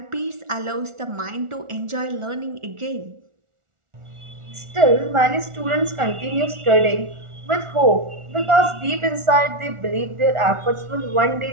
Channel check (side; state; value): left; late; 1.4 ms